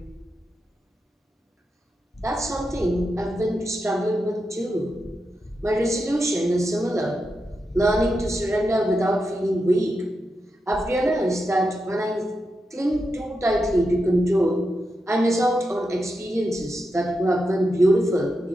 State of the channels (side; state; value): both; normal; correlation 0.87